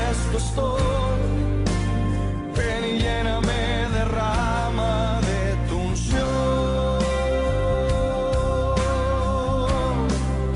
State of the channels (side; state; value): both; identical; correlation 1.00